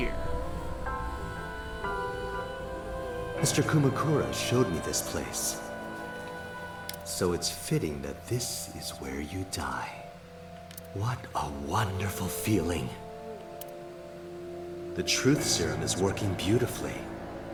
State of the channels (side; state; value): both; identical; correlation 1.00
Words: Mr. Kumakura showed me this place. So it's fitting that this is where you die. What a wonderful feeling. The truth serum is working beautifully.